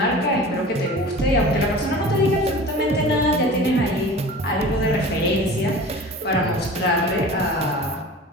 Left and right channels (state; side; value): normal; both; correlation 0.38